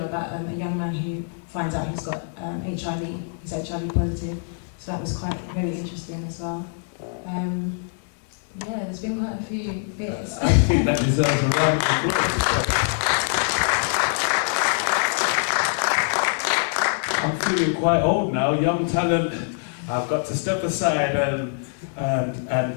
about a young man who finds out he's got HIV, he's HIV positive. So that was quite very interesting as well. Yeah, there's been quite a few bits. I think that deserves a round of applause. I'm feeling quite old now, young talent. I've got to step aside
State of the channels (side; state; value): right; silent; 63 dB below the other